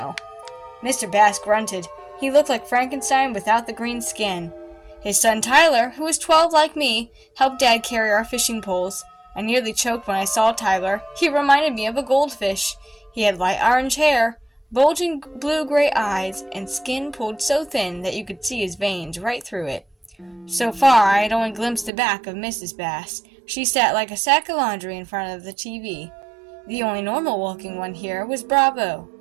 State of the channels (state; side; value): drops out; left; at 21.9 s